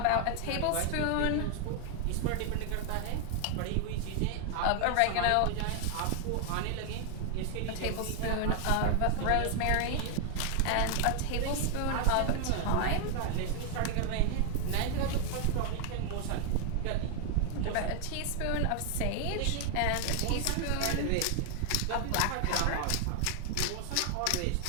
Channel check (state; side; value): different; both; correlation 0.00